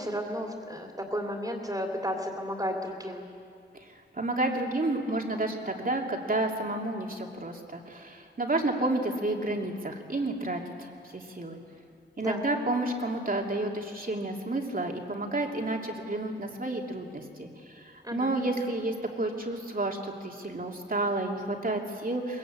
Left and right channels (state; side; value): normal; both; correlation 0.42